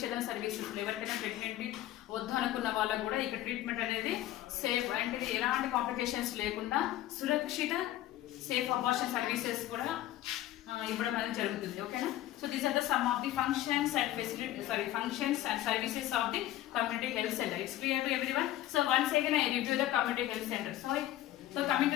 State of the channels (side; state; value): right; quieter; 14.1 dB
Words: సర్వీసెస్. ఎవరికైనా ప్రెగ్నెంట్ వద్దు అనుకున్న వాళ్ళకు కూడా ఇక్కడ ట్రీట్మెంట్ అనేది సేఫ్ అంటే ఎలాంటి కాంప్లికేషన్స్ లేకుండా సురక్షిత సేఫ్ అబార్షన్ సర్వీసెస్ కూడా ఇవ్వడం అనేది జరుగుతుంది. ఓకేనా? So these are the some of the functions and functions and services of the community health centre. It's clear to everyone. So once again I review the community health center. So coming to